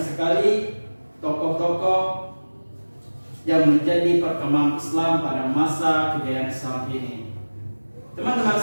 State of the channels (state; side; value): inverted; both; correlation -1.00